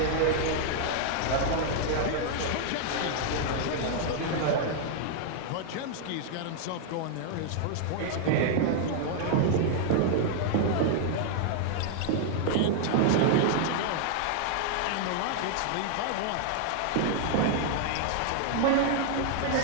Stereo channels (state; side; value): different; both; correlation 0.00